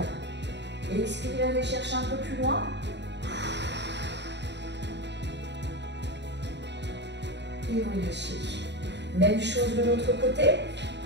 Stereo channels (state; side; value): late; left; 0.51 ms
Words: Et expirez, allez chercher un peu plus loin. Et relâchez. Même chose de l'autre côté.